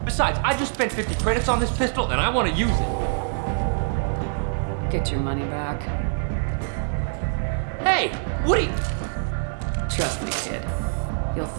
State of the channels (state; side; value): silent; left; 62 dB below the other